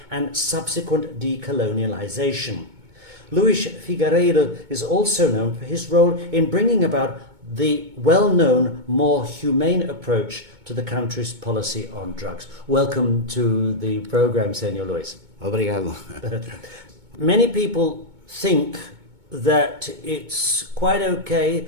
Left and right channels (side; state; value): left; late; 2.2 ms